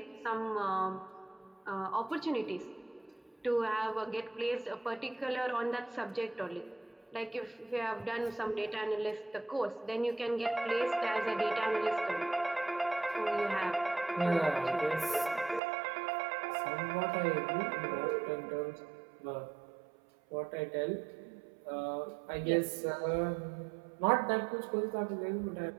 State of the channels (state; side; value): drops out; left; at 15.6 s